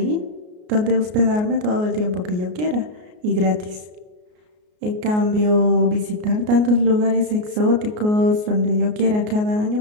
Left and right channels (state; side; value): late; left; 33 ms